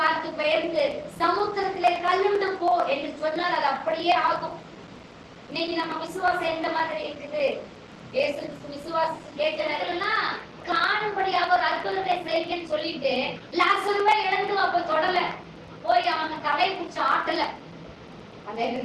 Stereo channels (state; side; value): identical; both; correlation 1.00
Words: பெயர்ந்து சமுத்திரத்திலே கல்லுண்டு போ என்று சொன்னால் அது அப்படியே ஆகும். இன்னைக்கு நம்ம விசுவாசம் எந்த மாதிரி இருக்குது? இயேசு விசுவாசம் கேட்கிறதெல்லாம் காணும்படியாக ஒரு அற்புதத்தை செய்யுங்கன்னு சொல்லிட்டு லாசருவை இழந்து அப்ப தொடல போய் அவன் தலை பிடிச்ச ஆட்டல.